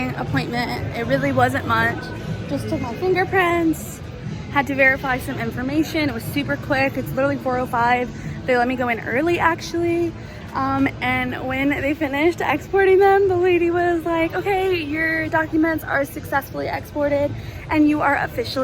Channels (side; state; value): both; identical; correlation 1.00